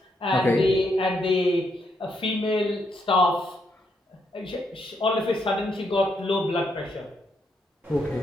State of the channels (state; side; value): normal; both; correlation 0.77